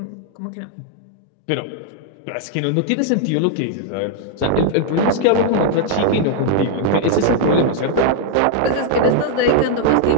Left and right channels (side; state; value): both; different; correlation 0.00